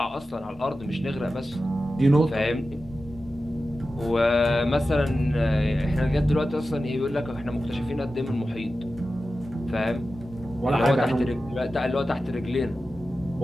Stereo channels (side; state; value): both; normal; correlation 0.93